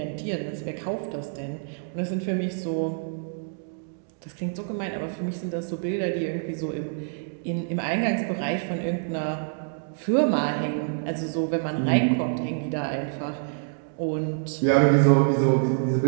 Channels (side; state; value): left; silent; digital silence